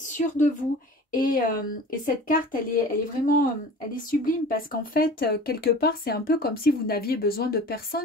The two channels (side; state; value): both; normal; correlation 0.40